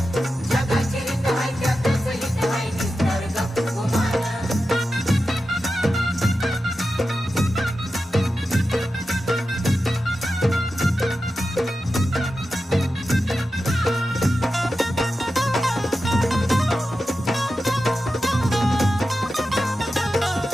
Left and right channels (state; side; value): normal; both; correlation 0.91